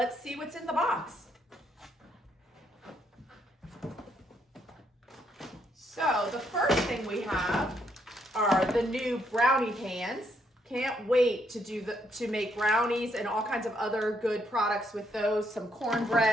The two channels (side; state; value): both; normal; correlation 0.74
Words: see what's in the box. So the first thing we have are the new brownie pans. Can't wait to make brownies and all kinds of other good products with those. Some